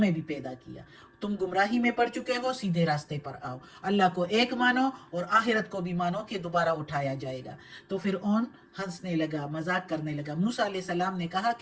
भी पैदा किया। तुम गुमराही में पड़ चुके हो, सीधे रास्ते पर आओ, अल्लाह को एक मानो और आखिरत को भी मानो कि दोबारा उठाया जाएगा। तो फ़िरऔन हंसने लगा, मजाक करने लगा। मूसा अलैहिस्सलाम ने कहा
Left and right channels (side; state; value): both; identical; correlation 1.00